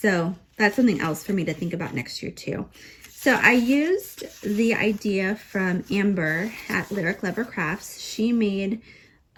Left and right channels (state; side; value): identical; both; correlation 1.00